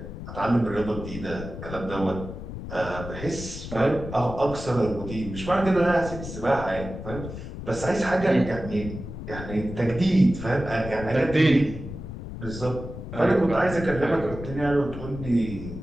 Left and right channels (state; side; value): noise; left; rumble, 10 dB below the sound